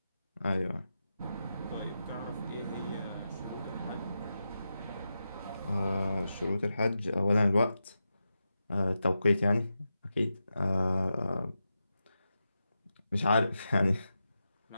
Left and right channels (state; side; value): inverted; both; correlation -0.90